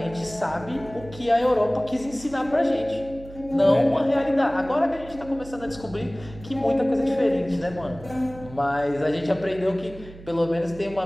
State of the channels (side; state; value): right; noise; hum, 17 dB below the sound